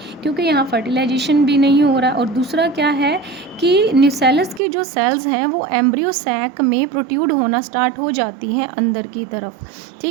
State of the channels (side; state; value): left; drops out; at 4.6 s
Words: क्योंकि यहाँ फर्टिलाइजेशन भी नहीं हो रहा. और दूसरा क्या है कि न्यूसेलस की जो सेल्स हैं वो एम्ब्रियो सैक में प्रोट्रूड होना स्टार्ट हो जाती हैं अंदर की तरफ.